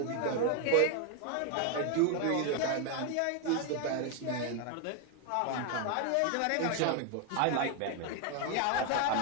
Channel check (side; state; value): both; different; correlation 0.01